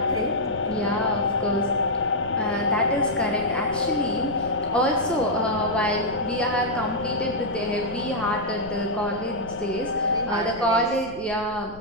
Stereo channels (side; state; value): left; noise; rumble, 19 dB below the sound